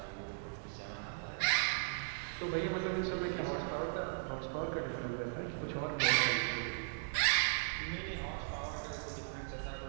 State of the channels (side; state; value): left; silent; 53 dB below the other